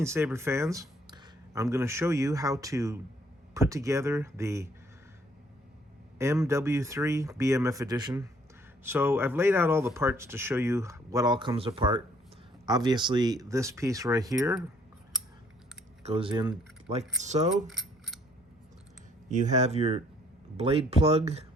saber fans. I'm going to show you how to put together the MW3 BMF edition. So I've laid out all the parts to show you what all comes apart. Obviously, this piece right here goes in like so. You have your blade plug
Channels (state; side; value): normal; both; correlation 0.63